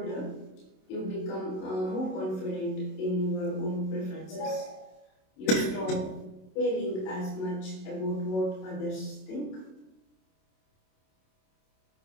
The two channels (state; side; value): late; right; 27 ms